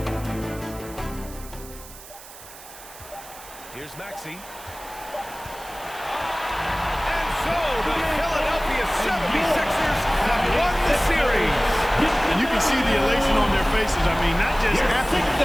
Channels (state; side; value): noise; right; hiss, 17 dB below the sound